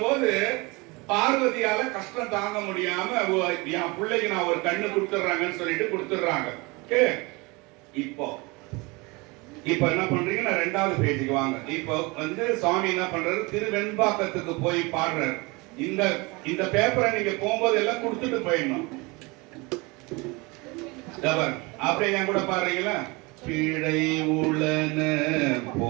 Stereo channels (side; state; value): left; quieter; 25.9 dB